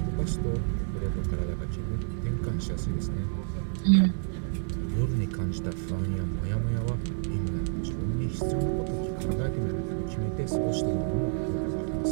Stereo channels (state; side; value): silent; left; 58 dB below the other